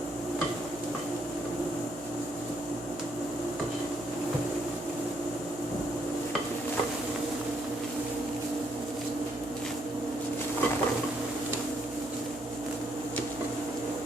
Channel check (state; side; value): noise; right; hum, 19 dB below the sound